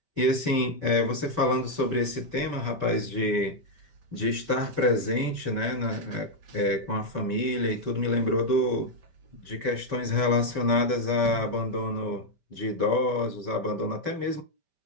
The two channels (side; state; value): left; late; 5.1 ms